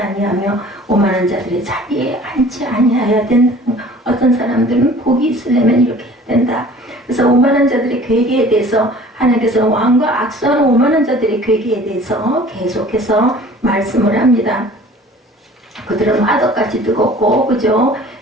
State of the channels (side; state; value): both; normal; correlation 0.48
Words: 오만한 자들의 자리에 앉지 아니하여야 된다. 어떤 사람들은 복이 있으려면 이렇게 해야 된다. 그래서 오만한 자들의 괴계에 대해서 하나님께서 왕과 악수하는 오만한 자들의 괴계에 대해서 계속해서 말씀을 합니다. 그들은 화덕같이 뜨겁고 그죠?